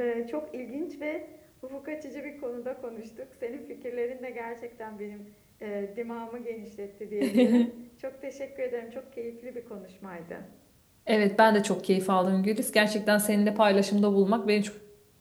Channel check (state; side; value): identical; both; correlation 1.00